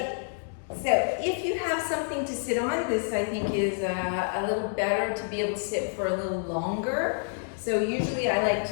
so if you have something to sit on, this I think is a little better to be able to sit for a little longer. So usually I like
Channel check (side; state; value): right; silent; digital silence